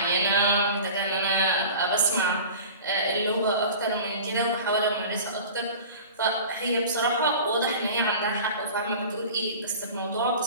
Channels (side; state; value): both; inverted; correlation -0.38